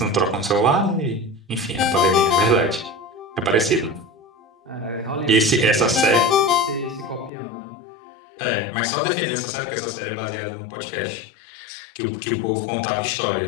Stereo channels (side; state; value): right; drops out; at 7.3 s